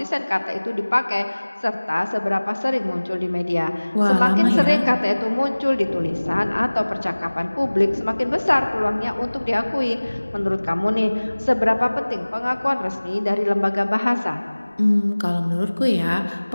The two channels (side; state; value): both; inverted; correlation -1.00